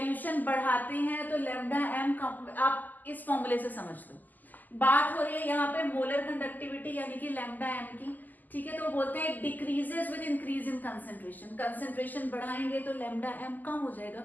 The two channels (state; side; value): late; right; 0.084 ms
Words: बढ़ाते हैं तो लैम्डा एम, आप इस फॉर्मूले से समझ लो। बात हो रही है यहाँ पे मोलर कंडक्टिविटी यानी कि लैम्डा एम की, ठीक है। तो बोलते हैं decreases with increase in concentration. Concentration बढ़ाएंगे तो लैम्डा एम कम हो जाएगा,